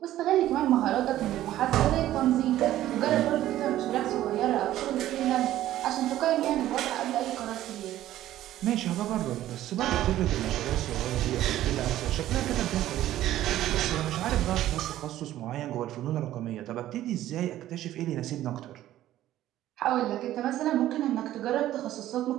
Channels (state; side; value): quieter; left; 13.6 dB